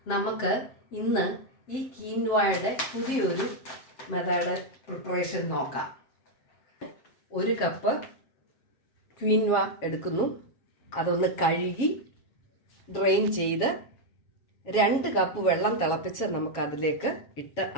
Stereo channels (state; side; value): late; right; 7.3 ms